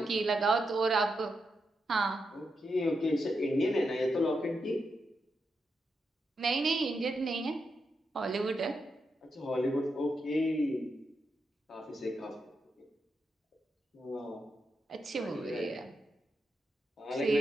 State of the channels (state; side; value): normal; both; correlation 0.85